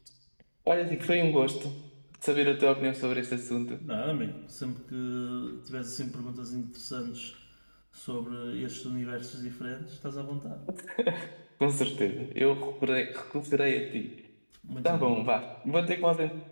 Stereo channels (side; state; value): both; inverted; correlation -1.00